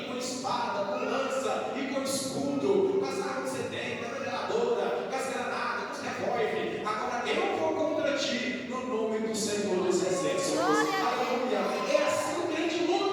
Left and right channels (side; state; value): both; identical; correlation 1.00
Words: com espada, com lança e com escudo, com as armas que você tem, com a metralhadora, com as granadas, com os revólveres. Agora eu vou contra ti no nome do Senhor dos Exércitos. Aleluia. É assim que o crente